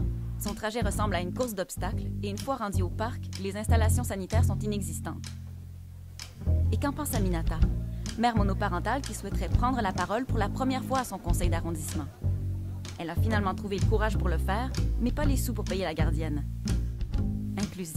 Son trajet ressemble à une course d'obstacles et une fois rendu au parc, les installations sanitaires sont inexistantes. Et qu'en pense Aminata, mère monoparentale qui souhaiterait prendre la parole pour la première fois à son conseil d'arrondissement? Elle a finalement trouvé le courage pour le faire, mais pas les sous pour payer la gardienne.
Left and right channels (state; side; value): identical; both; correlation 1.00